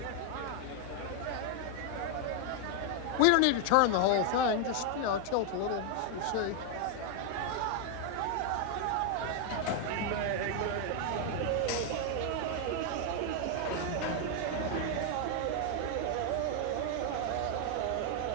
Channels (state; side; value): different; both; correlation 0.00